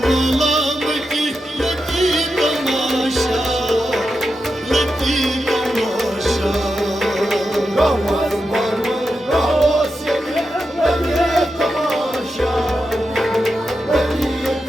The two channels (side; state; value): both; normal; correlation 0.88